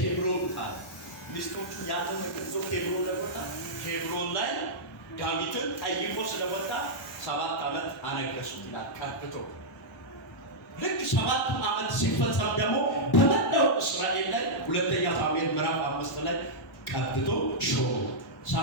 አለ። ሚስቶቹ ያተመከዙ ኬብሮን ላይ ወጣ። ኬብሮን ላይ ዳዊትን ጠይቆ ስለወጣ 7 ዓመት አነገሱት ይላል ቀብቶ። ልክ 7 ዓመት ሲፈጸም ደግሞ በመላው እስራኤል ላይ ሁለተኛ ሳሙኤል ምዕራፍ 5 ላይ ቀብቶ ሾመ።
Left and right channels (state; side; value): normal; both; correlation -0.09